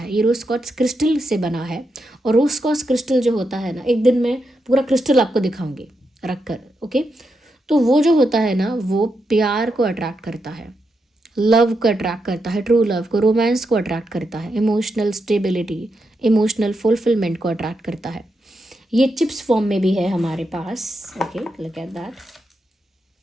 ये रोज़ क्वार्ट्स क्रिस्टल से बना है और रोज़ क्वार्ट्स क्रिस्टल जो होता है ना, एक दिन मैं पूरा क्रिस्टल आपको दिखाऊंगी रख कर, ओके। तो वो जो होता है ना, वो प्यार को अट्रैक्ट करता है, लव को अट्रैक्ट करता है, ट्रू लव को, रोमांस को अट्रैक्ट करता है, इमोशनल स्टेबिलिटी, इमोशनल फुलफिलमेंट को अट्रैक्ट करता है। ये चिप्स फॉर्म में भी है हमारे पास, okay, look at that.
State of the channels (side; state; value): both; normal; correlation 0.84